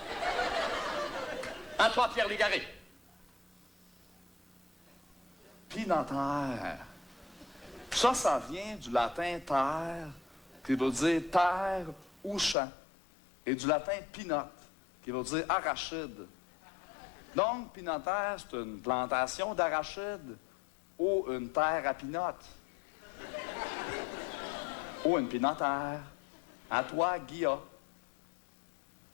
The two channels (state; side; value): drops out; right; at 12.6 s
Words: À toi, Pierre Légaré. Pinotaire. Ça vient du latin terre, qui veut dire terre ou champ, et du latin pinote, qui veut dire arachide. Donc, pinotaire, c'est une plantation d'arachides ou une terre à pinote. Ou une pinotaire. À toi, Guilla.